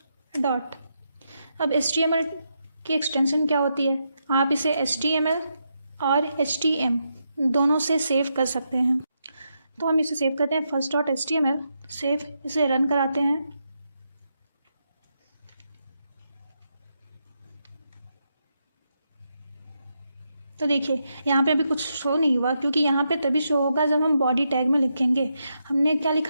डॉट। अब HTML की एक्सटेंशन क्या होती है? आप इसे HTML और HTM दोनों से सेव कर सकते हैं। तो हम इसे सेव करते हैं फर्स्ट डॉट HTML, सेव, इसे रन कराते हैं। तो देखिए यहाँ पे अभी कुछ शो नहीं हुआ, क्योंकि यहाँ पे तभी शो होगा जब हम बॉडी टैग में लिखेंगे। हमने क्या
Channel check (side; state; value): both; inverted; correlation -0.83